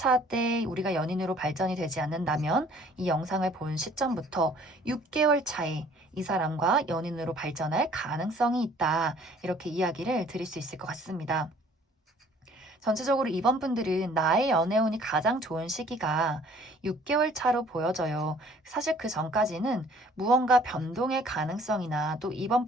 때 우리가 연인으로 발전이 되지 않는다면 이 영상을 본 시점부터 6개월 차에 이 사람과 연인으로 발전할 가능성이 있다. 이렇게 이야기를 드릴 수 있을 것 같습니다. 전체적으로 이번 분들은 나의 연애운이 가장 좋은 시기가 6개월 차로 보여져요. 사실 그 전까지는 무언가 변동의 가능성이나 또 이번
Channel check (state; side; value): normal; both; correlation 0.55